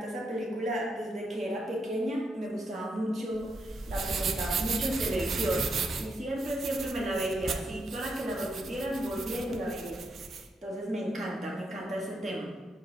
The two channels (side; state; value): both; normal; correlation 0.80